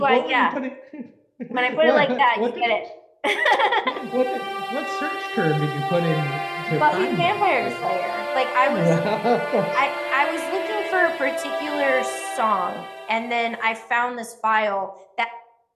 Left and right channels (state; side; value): identical; both; correlation 1.00